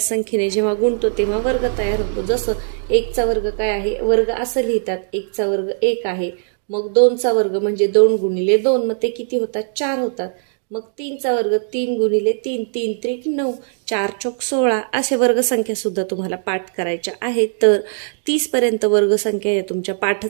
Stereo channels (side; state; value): left; silent; digital silence